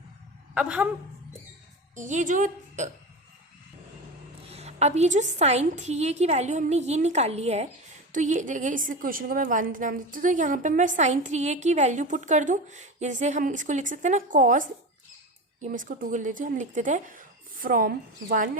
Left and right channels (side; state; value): both; normal; correlation 0.25